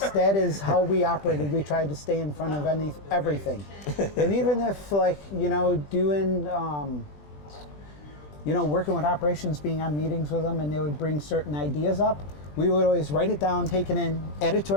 That is how we operated. We tried to stay in front of everything. And even if doing working with operations, being on meetings with them, and they would bring certain ideas up, we would always write it down, take it in, add it to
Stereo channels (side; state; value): right; late; 20 ms